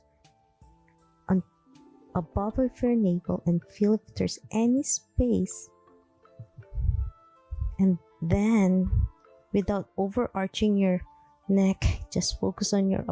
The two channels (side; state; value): both; identical; correlation 1.00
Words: on above of your navel and feel if there's any space. And then, without overarching your neck, just focus on your